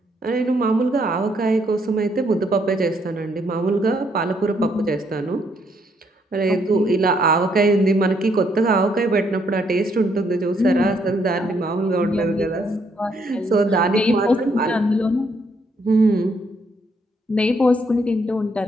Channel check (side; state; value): both; normal; correlation 0.72